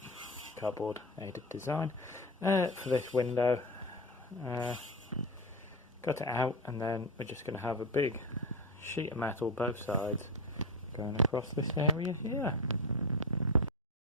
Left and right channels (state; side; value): normal; both; correlation 0.18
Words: cardboard aided design, for this window. Cut it out, and then we're just going to have a big sheet of metal both sides going across this area here.